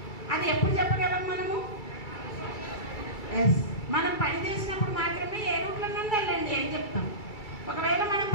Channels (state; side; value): late; right; 2.3 ms